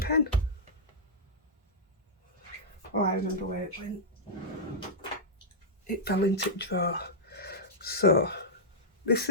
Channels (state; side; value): normal; both; correlation -0.10